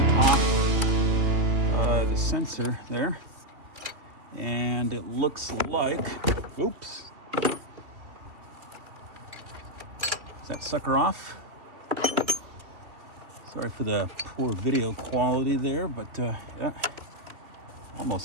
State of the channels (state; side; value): late; left; 3.0 ms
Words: Sensor there, and it looks like, oops, is that sucker off? Sorry for the poor video quality there, but yeah,